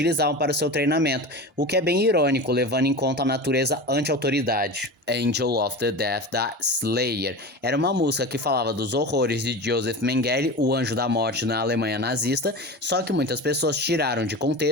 para o seu treinamento, o que é bem irônico, levando em conta a natureza anti-autoridade. Angel of the Death, da Slayer. Era uma música que falava dos horrores de Joseph Mengele, o anjo da morte na Alemanha nazista, só que muitas pessoas tiraram de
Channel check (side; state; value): both; normal; correlation 0.29